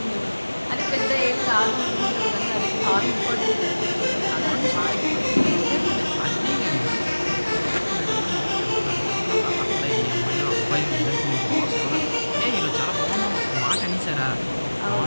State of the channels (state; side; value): inverted; both; correlation -1.00